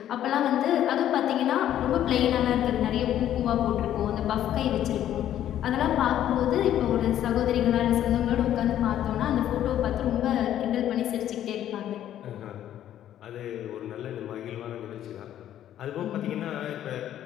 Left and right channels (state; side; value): quieter; right; 11.4 dB